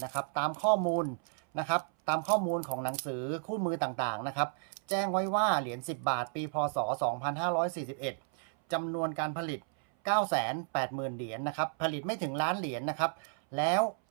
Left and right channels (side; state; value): left; silent; 56 dB below the other